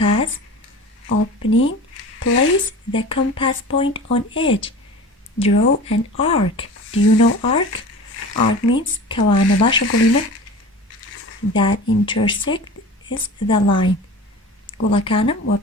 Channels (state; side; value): normal; both; correlation 0.36